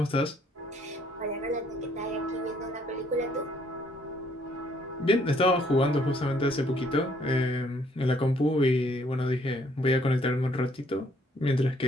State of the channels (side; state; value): both; normal; correlation 0.65